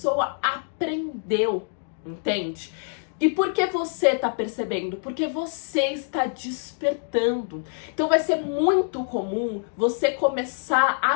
aprendeu, entende? E por que você tá percebendo? Porque você está despertando. Então vai ser muito comum você começar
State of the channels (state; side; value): silent; right; digital silence